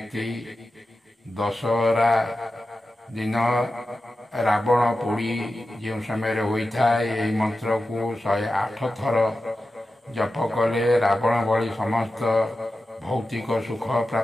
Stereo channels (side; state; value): both; normal; correlation 0.92